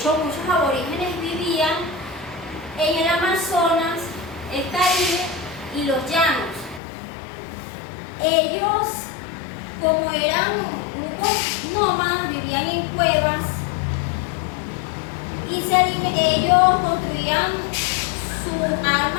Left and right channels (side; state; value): right; drops out; at 6.8 s